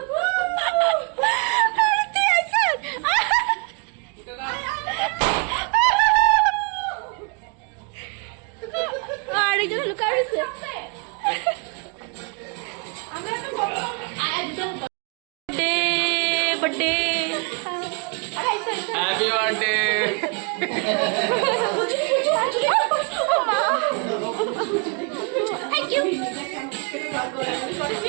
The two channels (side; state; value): left; quieter; 35.1 dB